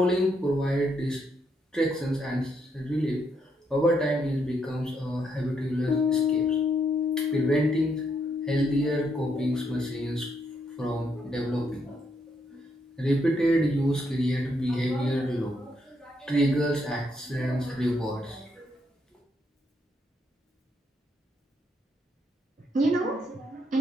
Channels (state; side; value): normal; both; correlation 0.75